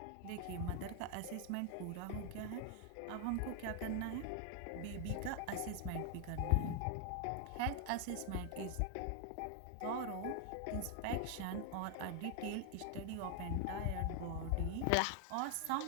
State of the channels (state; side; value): different; both; correlation 0.00